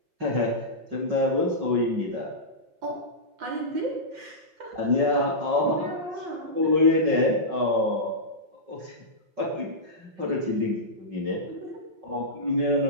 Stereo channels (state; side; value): late; left; 5.4 ms